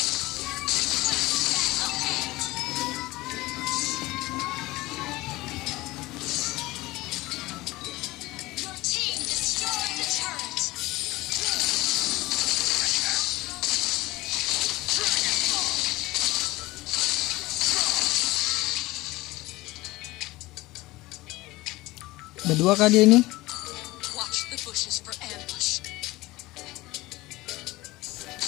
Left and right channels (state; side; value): quieter; right; 19.6 dB